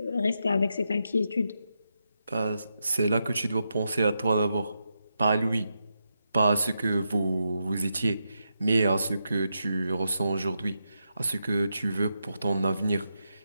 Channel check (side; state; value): both; inverted; correlation -0.85